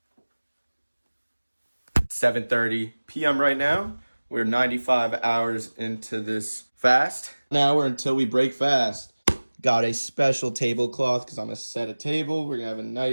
7:30 p.m. right now. We're 95 hours into this fast. Now we're until we break fast. Got a special tablecloth because I'm going to set a table. We're going to have a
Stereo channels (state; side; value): inverted; both; correlation -1.00